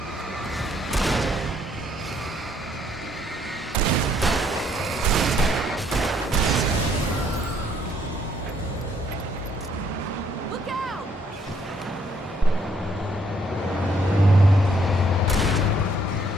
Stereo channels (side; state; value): both; normal; correlation 0.68